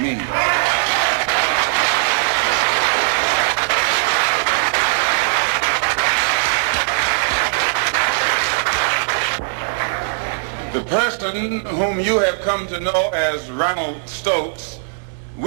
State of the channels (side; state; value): left; silent; 65 dB below the other